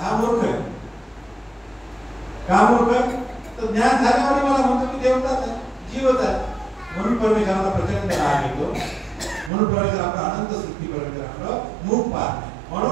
मूर्ख आहे. का मूर्ख? तर ज्ञान झाल्यावर मला म्हणतो की देवताच आहे, जीवच आहे. म्हणून परमेश्वराला प्रचंड राग येतो. म्हणून परमेश्वर आपला अनंत सृष्टी परमेश्वर आपलं मुख पाहत नाही.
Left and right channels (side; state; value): left; drops out; at 9.5 s